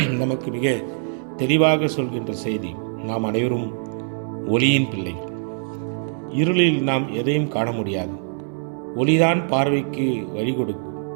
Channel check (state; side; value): silent; left; digital silence